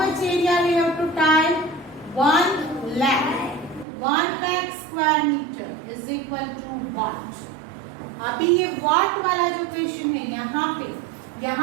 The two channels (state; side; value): drops out; left; at 3.9 s